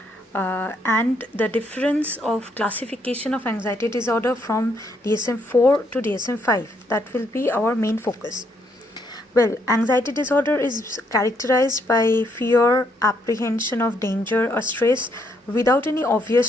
and the difference of classification of anxiety disorder from DSM 4 to DSM 5. That will be our main focus. Well, anxiety disorder is characterized by fear, apprehension of danger or stress without any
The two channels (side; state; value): both; normal; correlation 0.73